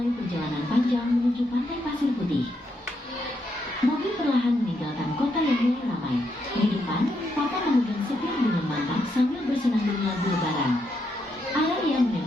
perjalanan panjang menuju pantai pasir putih. Mobil perlahan meninggalkan kota yang mulai ramai. Di depan, Papa memegang setir dengan mantap sambil bersenandung lagu lebaran. Araria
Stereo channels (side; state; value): both; normal; correlation 0.79